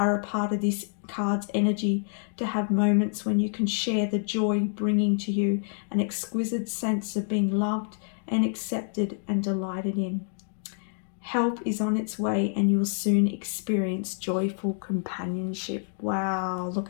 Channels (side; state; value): right; silent; 60 dB below the other